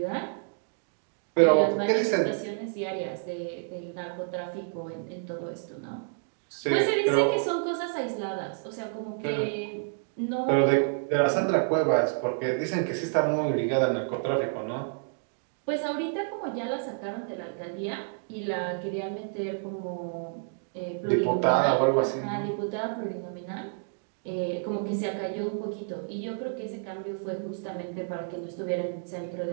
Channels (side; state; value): left; silent; digital silence